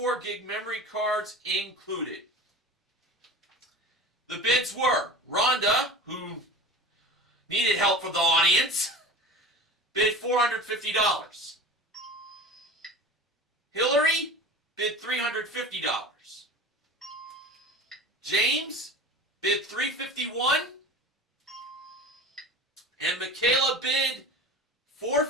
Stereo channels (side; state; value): both; normal; correlation 0.35